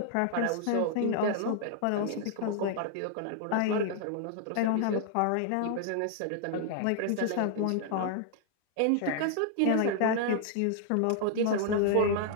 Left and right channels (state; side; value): different; both; correlation 0.00